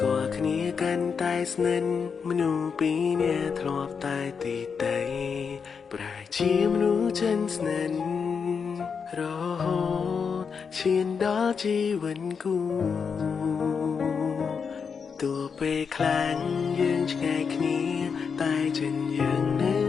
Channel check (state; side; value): quieter; right; 6.0 dB